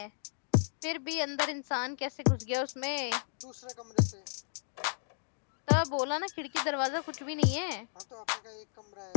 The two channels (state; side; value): silent; right; digital silence